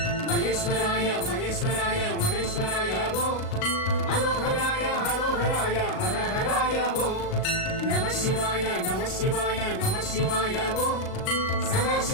மகேஸ்வராய மகேஸ்வராய மகேஸ்வராய ஓம் ஹரோஹராய ஹரோஹராய ஹரஹராய ஓம் நம சிவாய நம சிவாய நம சிவாய ஓம் சதா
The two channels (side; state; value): right; late; 38 ms